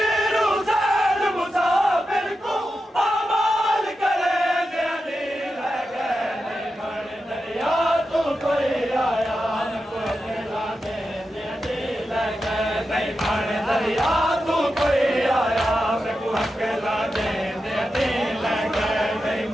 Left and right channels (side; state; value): both; normal; correlation 0.90